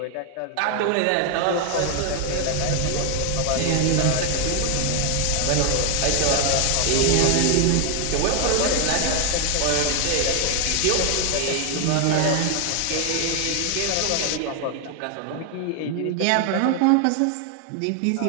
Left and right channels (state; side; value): different; both; correlation 0.00